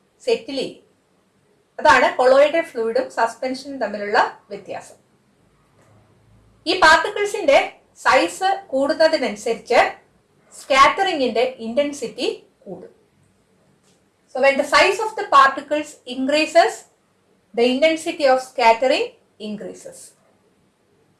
സെറ്റിൽ ചെയ്യും. അതാണ് കൊളോയിഡൽ ഫ്ലൂയിഡും സസ്പെൻഷനും തമ്മിലുള്ള വ്യത്യാസം. ഈ പാർട്ടിക്കിൾസിന്റെ സൈസ് കൂടുന്നതിനനുസരിച്ച് സ്കാറ്ററിംഗിന്റെ ഇന്റൻസിറ്റി കൂടും. So when the size of the particles increases, the intensity of scattering increases.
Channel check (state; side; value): identical; both; correlation 1.00